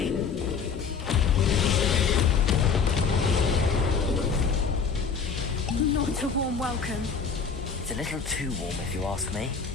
Not a warm welcome. It's a little too warm, if you ask me.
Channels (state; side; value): quieter; right; 5.7 dB